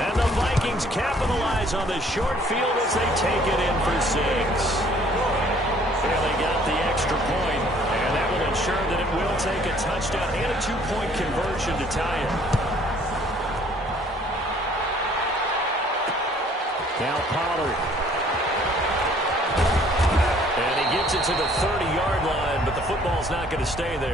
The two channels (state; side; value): normal; both; correlation 0.58